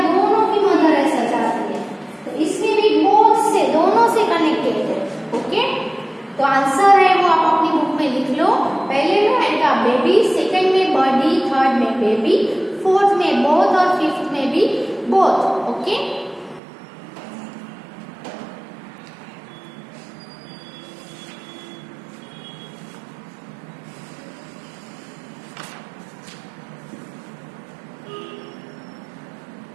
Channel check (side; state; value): left; drops out; at 16.6 s